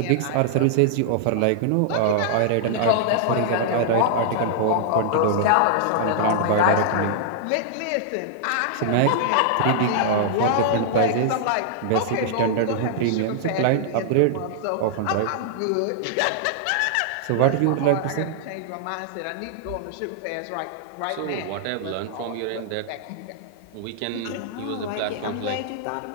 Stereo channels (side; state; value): both; different; correlation -0.01